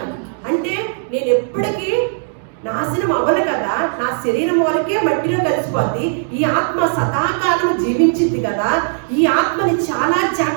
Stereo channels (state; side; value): silent; left; digital silence